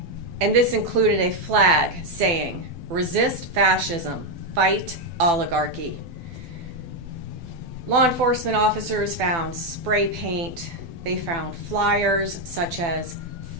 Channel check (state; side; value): late; left; 12 ms